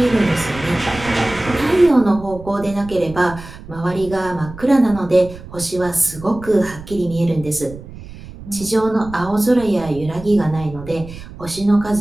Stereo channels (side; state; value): right; noise; rumble, 15 dB below the sound